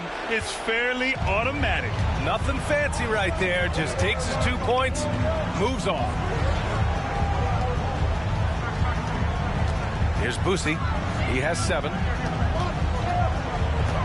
it's fairly automatic. Nothing fancy right there. Just takes his 2 points, moves on. Here's Boosie. He has 7.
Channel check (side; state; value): both; identical; correlation 1.00